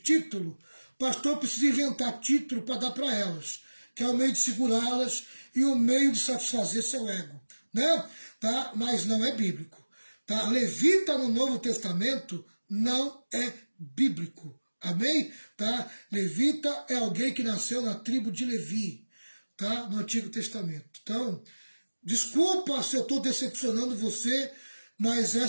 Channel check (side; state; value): both; inverted; correlation -1.00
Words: o pastor precisa inventar título para dar para elas, que é o meio de segurá-las e o meio de satisfazer seu ego. Né? Tá? Mas não é bíblico. Tá? Levita no Novo Testamento não é bíblico. Amém? Tá? Levita é alguém que nasceu na tribo de Levi, tá? No Antigo Testamento. Então, desculpa se eu estou decepcionando você, mas